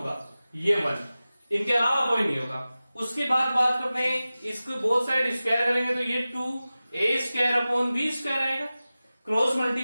ये 1, इनके अलावा कोई नहीं होगा। उसके बाद बात करते हैं, इसको बोथ साइड स्क्वायर करेंगे तो ये 2a² आएगा। क्रॉस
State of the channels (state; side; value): inverted; both; correlation -0.96